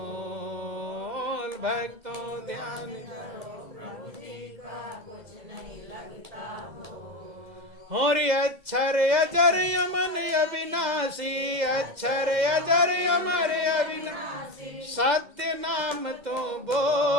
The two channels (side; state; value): left; late; 2.0 ms